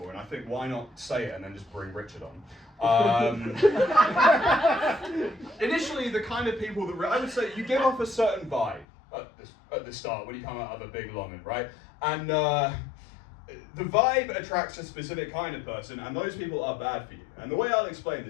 and I think why not say it and then just bring Richard on. Initially, the kind of people that I would say you give off a certain vibe at the start when you come out of a big longing, right? And the vibe attracts a specific kind of person, and those people are bad for you. And the way I'll explain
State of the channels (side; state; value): right; drops out; at 8.8 s